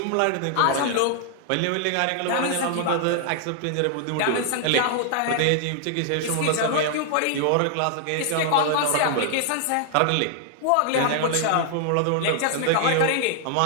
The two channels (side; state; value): both; different; correlation 0.00